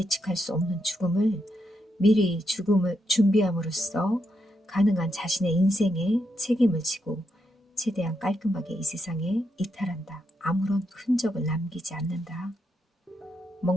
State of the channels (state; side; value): normal; both; correlation 0.81